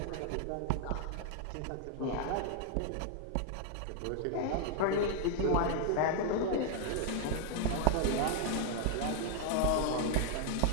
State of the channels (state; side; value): different; both; correlation 0.00